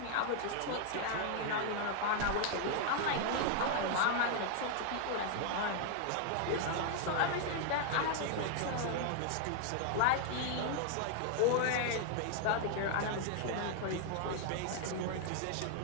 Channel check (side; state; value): both; different; correlation 0.00